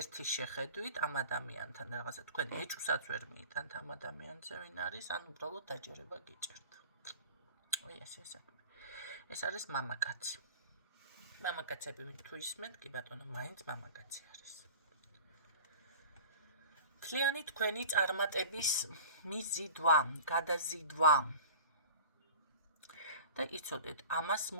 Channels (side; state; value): both; inverted; correlation -0.40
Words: შეხედვით ამ ადამიანთან რაღაცა თქვენ ეჭვსაც ვერ მიიტანთ ამ ადამიანზე ვინ არის, ან უბრალოდ დაჯერება გიჭერთ. ესე საქმე. ეს არის მამაკაცი. მამაკაცები თუ ისმენთ, კი ბატონო, მაინც მამაკაცი არის. მთლიანი თქვენი წარმატების მიზიდვა, გადაზიდვა. და იცოდეთ, ამას